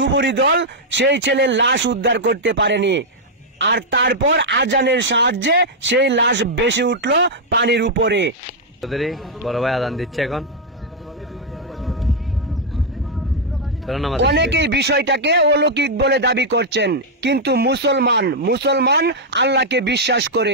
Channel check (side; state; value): both; normal; correlation -0.03